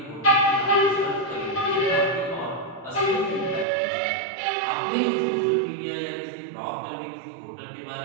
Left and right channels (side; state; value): left; drops out; at 3.7 s